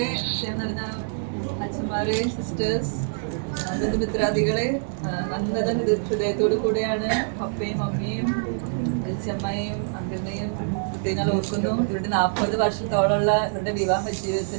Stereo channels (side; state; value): left; silent; 57 dB below the other